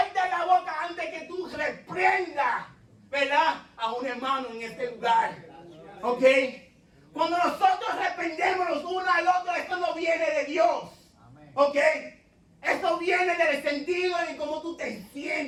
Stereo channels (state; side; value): identical; both; correlation 1.00